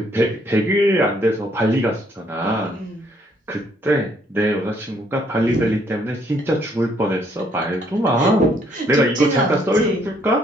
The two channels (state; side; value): normal; both; correlation 0.68